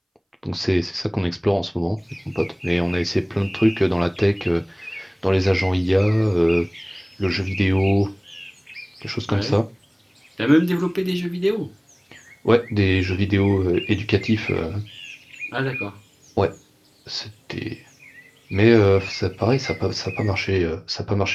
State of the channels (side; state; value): both; identical; correlation 1.00